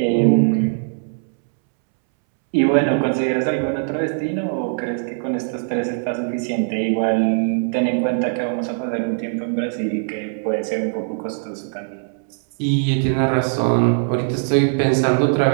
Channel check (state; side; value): silent; left; 65 dB below the other